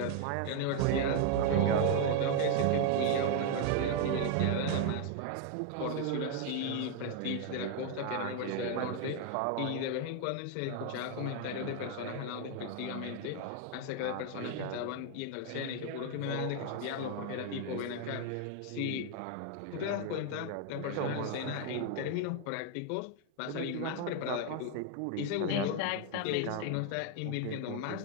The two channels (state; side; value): different; both; correlation 0.01